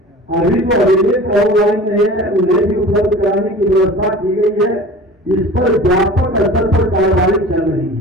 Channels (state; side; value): normal; both; correlation 0.40